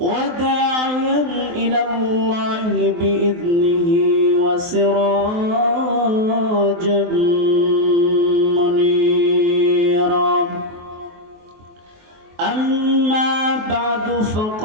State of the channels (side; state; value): left; late; 23 ms